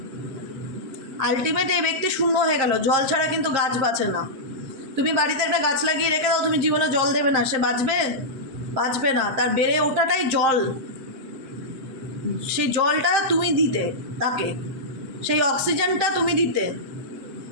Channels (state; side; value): late; left; 7.6 ms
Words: আলটিমেট এই ব্যক্তি শূন্য হয়ে গেল। জল ছাড়া কিন্তু গাছ বাঁচে না। তুমি বাড়িতে একটা গাছ লাগিয়ে রেখে দাও, তুমি জীবনে জল দেবে না, সে বাঁচবে না। তার বেড়ে ওঠাটাই জল, সেই জলটা তুমি দিতে তাকে, সেই অক্সিজেনটা তুমি দিতে